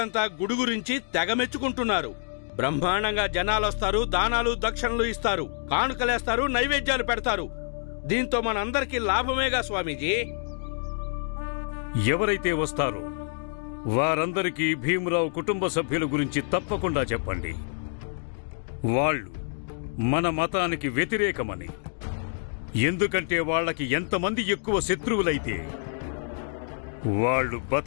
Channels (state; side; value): silent; right; digital silence